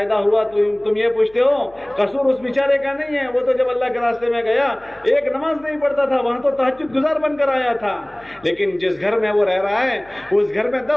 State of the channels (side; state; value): left; noise; hum, 28 dB below the sound